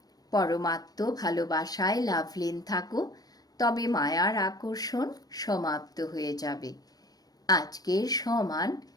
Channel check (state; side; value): late; right; 0.19 ms